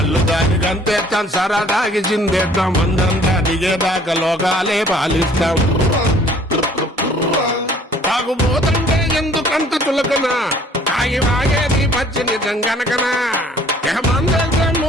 దాగి గంతేస్తాం, సరదాగి చిందేస్తాం. మందంతా దిగేదాకా లోకాలే పాలిస్తాం. తాగుబోతుంటే ఎందుకంత చులకనా, తాగి వాగేది పచ్చి నిజం గనకనా. మందంతా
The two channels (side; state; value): both; normal; correlation 0.56